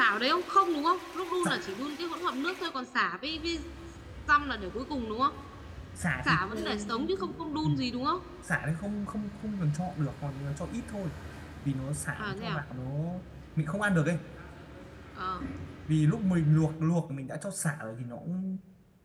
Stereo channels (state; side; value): identical; both; correlation 1.00